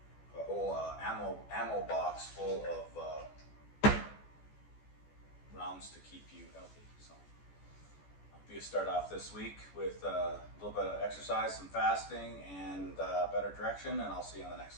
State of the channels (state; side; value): late; right; 14 ms